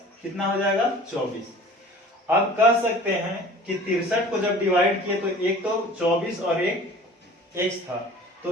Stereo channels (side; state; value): both; normal; correlation 0.44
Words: कितना हो जाएगा? 24। अब कह सकते हैं कि 63 को जब डिवाइड किए तो एक तो 24 और एक x था,